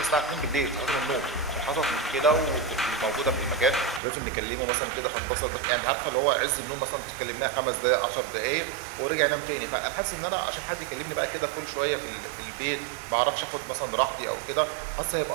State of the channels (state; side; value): drops out; left; at 4.0 s